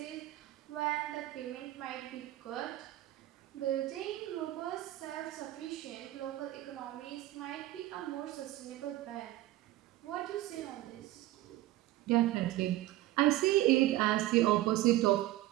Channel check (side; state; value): left; quieter; 15.8 dB